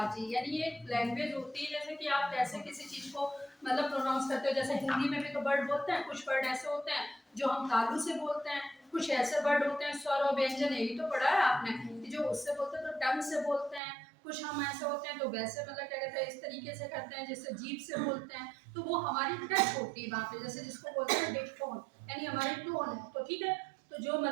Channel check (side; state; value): left; drops out; at 13.8 s